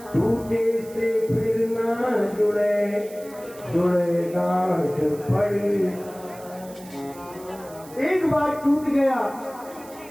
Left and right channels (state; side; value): noise; right; hiss, 21 dB below the sound